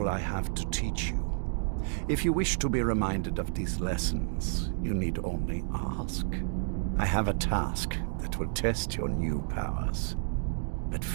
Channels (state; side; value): silent; left; digital silence